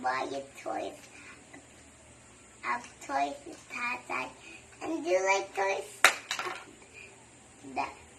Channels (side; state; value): both; identical; correlation 1.00